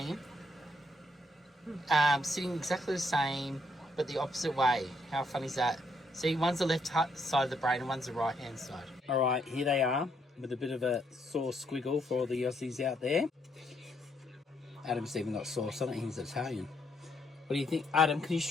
sitting exactly the same, but the opposite way. How fun is that? See, one's the left side of the brain and one's the right hand side. All right, here they are with a bit of a sore squiggle for all the Aussies out there. Adam's even got sauce on it, he's Italian. What do you think? Adam, can you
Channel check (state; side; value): normal; both; correlation 0.73